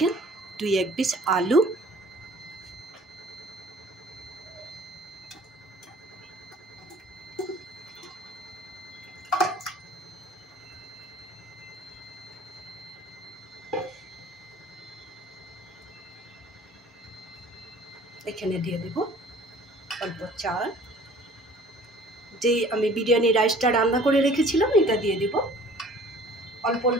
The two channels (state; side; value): normal; both; correlation 0.51